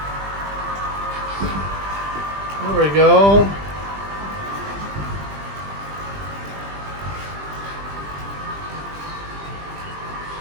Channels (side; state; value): left; late; 20 ms